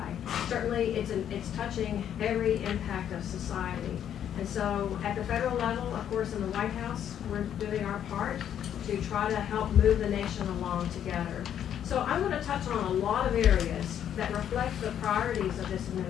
Certainly, it's touching every impact of society. And so at the federal level, of course, in the White House, we're doing our part to try to help move the nation along together. So I'm going to touch on a lot of areas that reflect the priorities of this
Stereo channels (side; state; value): right; quieter; 9.7 dB